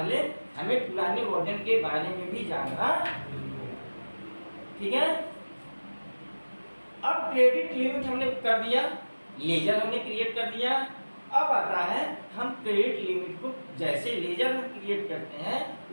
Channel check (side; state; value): both; inverted; correlation -1.00